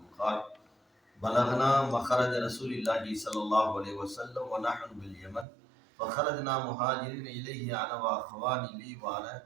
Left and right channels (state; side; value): drops out; left; at 5.5 s